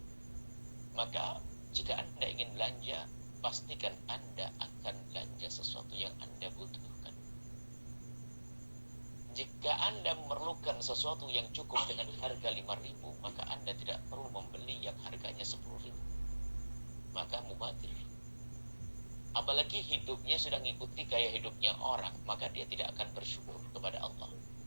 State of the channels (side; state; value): both; inverted; correlation -1.00